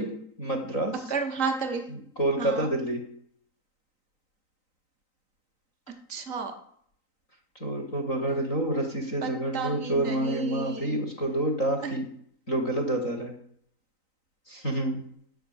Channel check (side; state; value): right; late; 3.9 ms